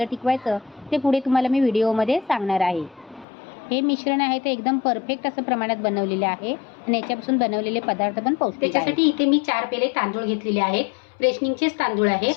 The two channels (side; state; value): right; drops out; at 3.2 s